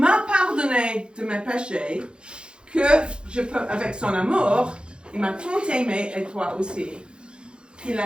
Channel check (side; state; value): left; late; 0.053 ms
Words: pardonné de mes péchés, que je peux, avec son amour, il m'a tant aimé et toi aussi, qu'il